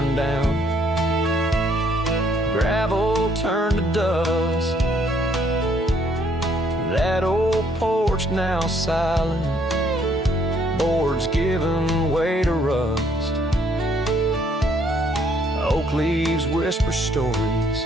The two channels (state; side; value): normal; both; correlation 0.67